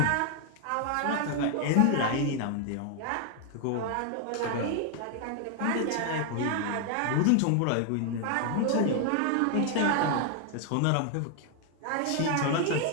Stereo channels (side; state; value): both; different; correlation 0.00